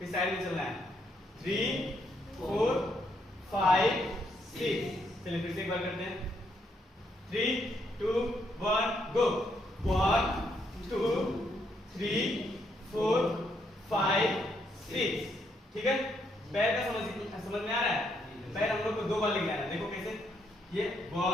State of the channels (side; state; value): both; normal; correlation 0.75